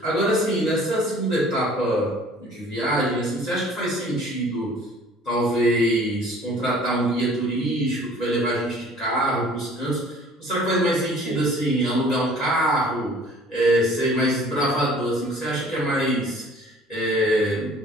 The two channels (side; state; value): both; normal; correlation 0.51